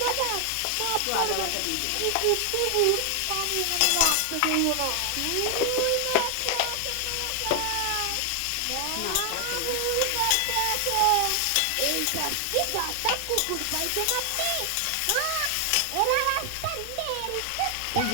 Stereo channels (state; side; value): different; both; correlation 0.00